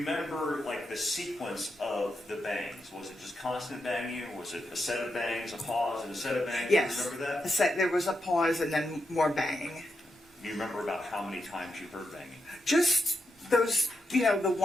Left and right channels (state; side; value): normal; both; correlation 0.85